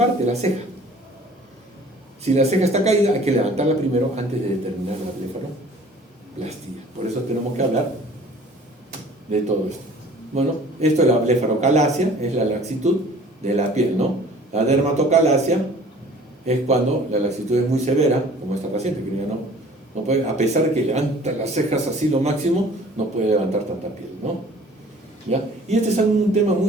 la ceja. Si la ceja está caída, hay que levantarla primero antes de determinar la blefaroplastia. Por eso tenemos que hablar de todo esto. Bueno, esto es la blefarocalacia, es la laxitud de la piel, ¿no? La dermatocalacia es cuando la laxitud es muy severa, como esta paciente, que ya no puede, a pesar de que levanta las cejas así lo máximo, no puede levantar tanta piel, ¿no? ¿Ya? Y este es un tema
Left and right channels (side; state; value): both; normal; correlation 0.50